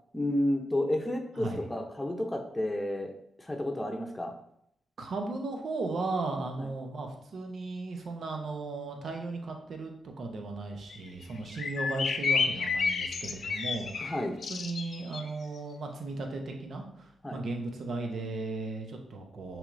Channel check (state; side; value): normal; both; correlation 0.84